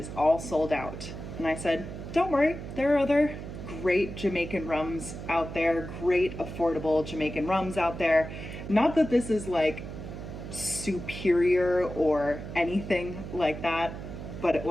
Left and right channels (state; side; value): noise; right; hum, 9 dB below the sound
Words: all sold out. And I said, don't worry, there are other great Jamaican rums out there, great affordable Jamaican rums out there. Not that this is like superior or anything like that, but it